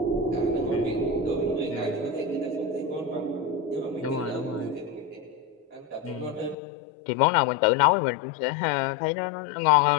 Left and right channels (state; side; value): drops out; right; at 6.6 s